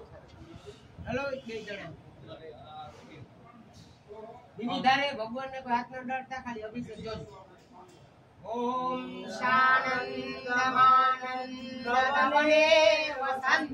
हेलो બે જણા બીજી ધારે ભગવાન ને કોઈ હાથ ન ડરતા ખાલી અભિષેક જોજો। ओम शानन्दमानन्दतमने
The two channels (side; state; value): both; identical; correlation 1.00